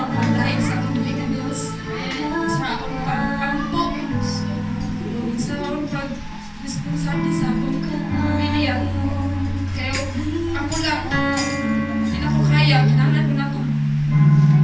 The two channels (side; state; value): both; identical; correlation 1.00